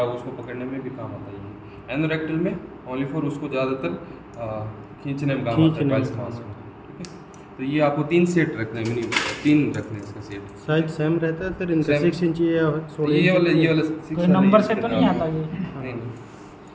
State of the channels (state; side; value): identical; both; correlation 1.00